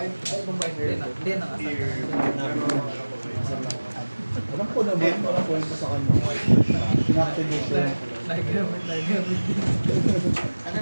na nga. Alam ko naman, walang kwento sa kanya. Inactivate siya. Nagamit. Ano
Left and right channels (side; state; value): both; inverted; correlation -1.00